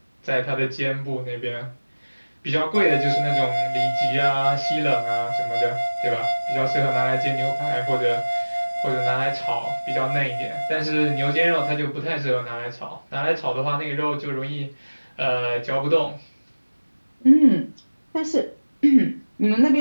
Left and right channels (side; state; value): both; inverted; correlation -1.00